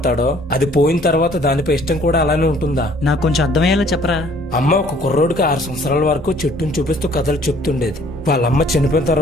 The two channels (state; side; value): normal; both; correlation 0.58